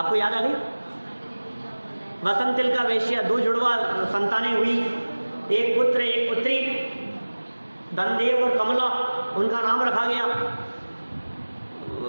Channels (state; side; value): inverted; both; correlation -1.00